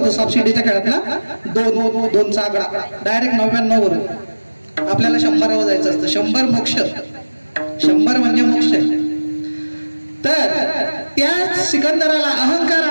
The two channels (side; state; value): both; inverted; correlation -1.00